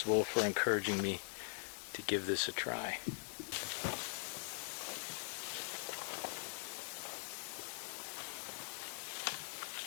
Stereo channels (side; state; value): right; silent; digital silence